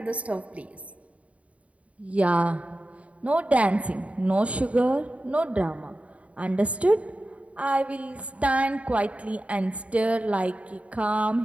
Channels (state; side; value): late; left; 0.066 ms